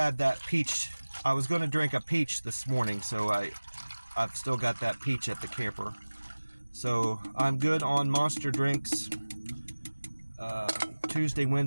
that peach. I was gonna drink a peach this morning, so I've still got that peach at the camper. So I'm good on Monster drinks Tuesday,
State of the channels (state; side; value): inverted; both; correlation -1.00